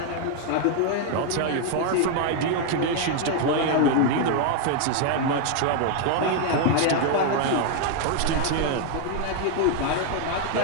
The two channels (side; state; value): both; different; correlation 0.00